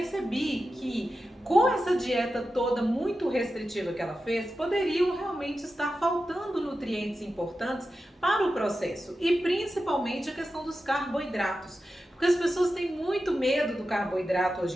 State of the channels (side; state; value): both; normal; correlation 0.92